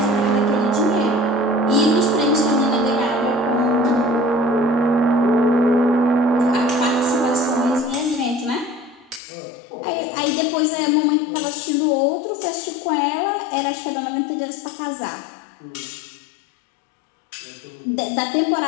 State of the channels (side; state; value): right; drops out; at 9.2 s